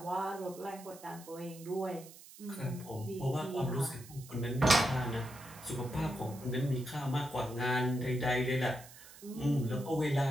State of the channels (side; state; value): right; noise; hiss, 18 dB below the sound